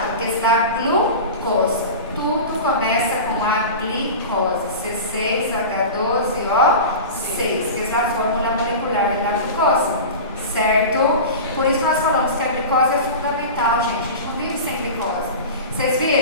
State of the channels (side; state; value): both; inverted; correlation -0.30